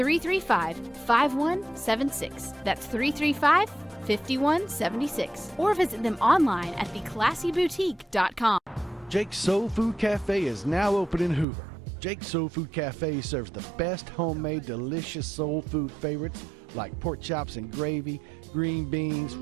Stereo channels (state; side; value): drops out; left; at 11.5 s